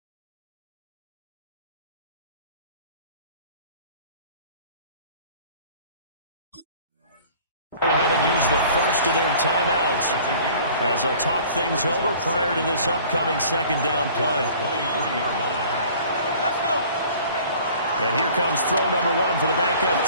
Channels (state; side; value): inverted; both; correlation -0.49